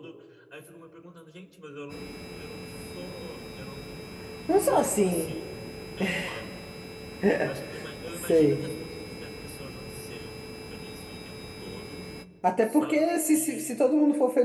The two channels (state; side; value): identical; both; correlation 1.00